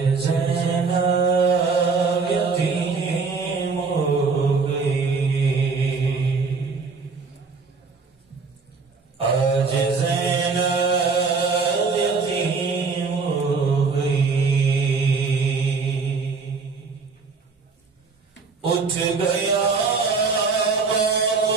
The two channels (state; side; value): quieter; left; 4.6 dB